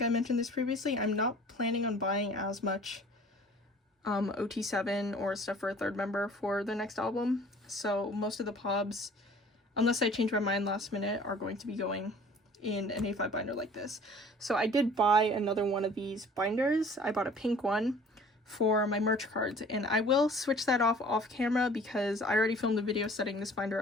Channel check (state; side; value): normal; both; correlation 0.49